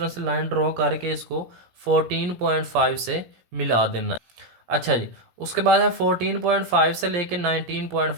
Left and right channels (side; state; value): left; late; 17 ms